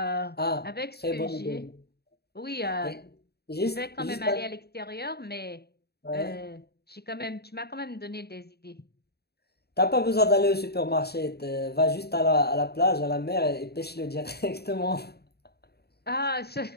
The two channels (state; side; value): late; right; 0.47 ms